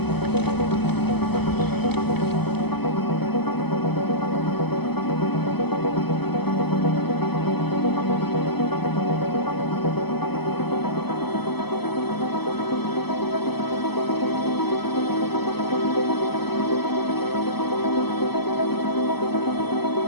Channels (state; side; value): late; right; 0.97 ms